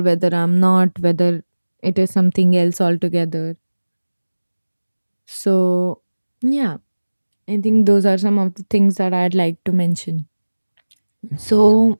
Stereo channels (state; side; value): inverted; both; correlation -1.00